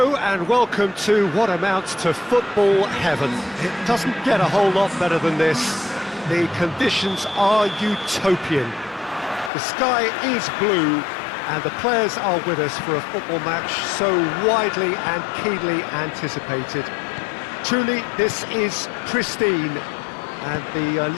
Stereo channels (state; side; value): drops out; right; at 9.5 s